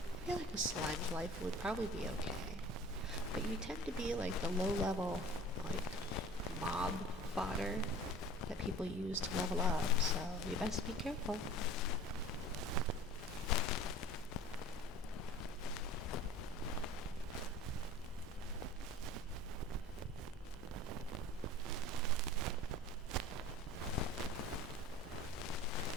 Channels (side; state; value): both; normal; correlation 0.43